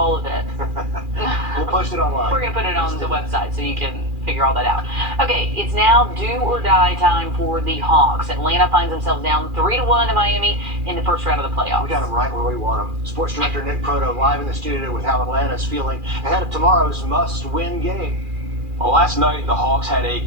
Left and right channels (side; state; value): left; late; 2.4 ms